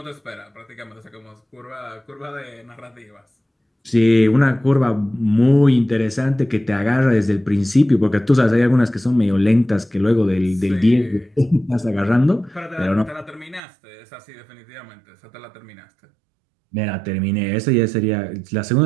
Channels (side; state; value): left; drops out; at 13.6 s